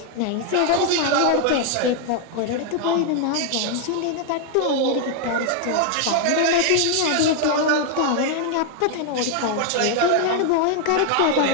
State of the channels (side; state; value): both; different; correlation 0.00